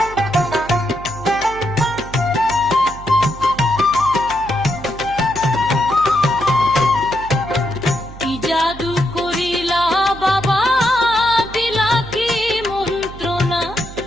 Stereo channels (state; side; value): noise; right; hum, 15 dB below the sound